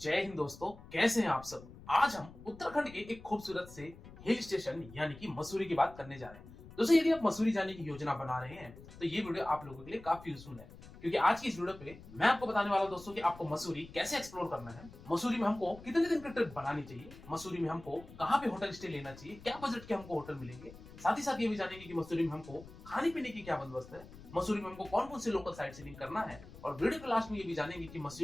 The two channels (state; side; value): noise; left; rumble, 18 dB below the sound